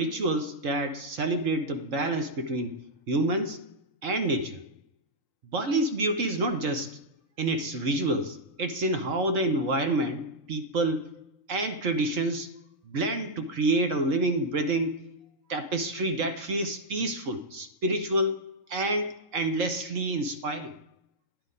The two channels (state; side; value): late; left; 3.8 ms